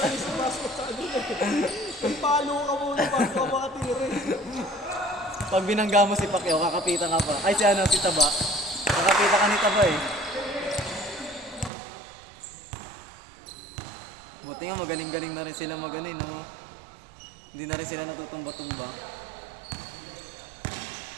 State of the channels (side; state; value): left; drops out; at 11.7 s